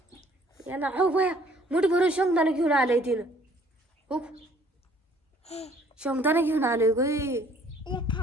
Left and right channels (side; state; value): both; normal; correlation 0.58